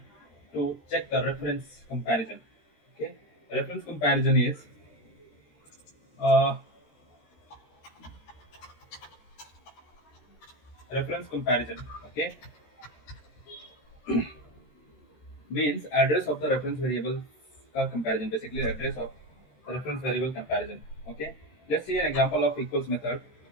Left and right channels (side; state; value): right; late; 13 ms